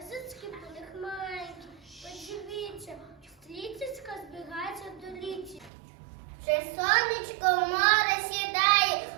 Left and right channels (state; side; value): drops out; left; at 5.7 s